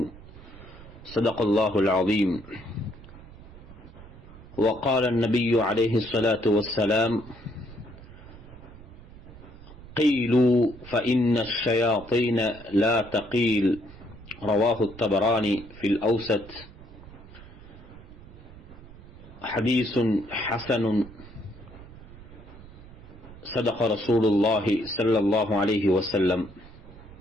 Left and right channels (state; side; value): noise; right; rumble, 18 dB below the sound